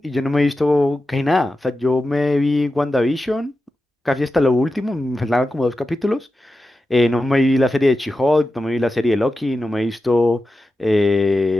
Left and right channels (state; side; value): normal; both; correlation 0.92